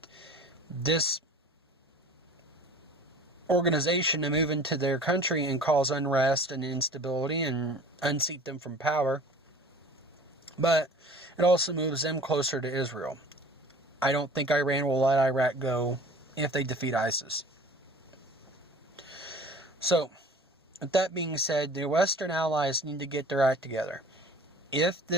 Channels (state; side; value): normal; both; correlation 0.45